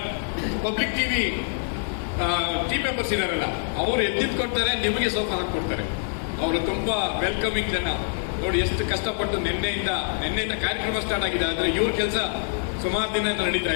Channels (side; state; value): right; silent; digital silence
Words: ಪಬ್ಲಿಕ್ ಟಿವಿ ಟೀಮ್ ಮೆಂಬರ್ಸ್ ಇದಾರಲ್ಲ, ಅವರು ಎದ್ದಿದ್ಕೊಡ್ತಾರೆ, ನಿಮಗೆ ಸೋಫಾ ಹಾಕೊಡ್ತಾರೆ. ಅವರು ತುಂಬಾ ವೆಲ್ಕಮಿಂಗ್ ಜನ. ನೋಡಿ ಎಷ್ಟು ಕಷ್ಟಪಟ್ಟು ನಿನ್ನೆಯಿಂದ ಕಾರ್ಯಕ್ರಮ ಸ್ಟಾರ್ಟ್ ಆಗಿದೆ, ಆದ್ರೆ ಇವ್ರ ಕೆಲಸ ಸುಮಾರು ದಿನ ನಡೀತಾ